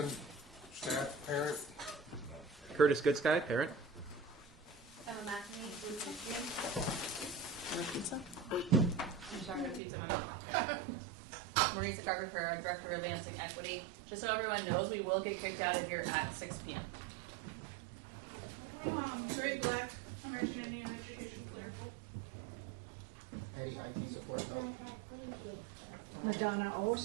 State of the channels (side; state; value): left; drops out; at 9.8 s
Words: staff, parent. Curtis Goodsky, parent. Emma McNamee, Duluth Pizza? Maurice Carver, Director of Advancing Equity. Just so everyone knows, we will get kicked out of here at 6 p.m. Sherry Black, American Indian Education. Madonna